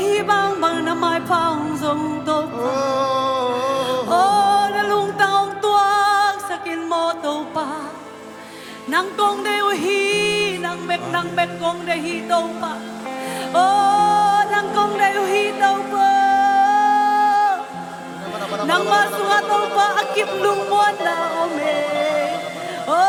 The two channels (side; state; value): both; identical; correlation 1.00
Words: bang bằng năm mai phong dùng tàu pa ô na lung tang ông tuang sakin mo tàu pa nang kong de hi nang bek kong de hi tàu pa ô nang kong de hi tàu pa nang masua tàu pa akip lung mon na ome ô